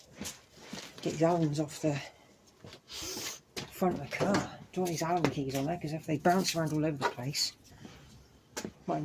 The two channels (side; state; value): both; identical; correlation 1.00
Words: Get these Allen's off the front of the car. Don't want these Allen keys on there, because if they bounce around all over the place, might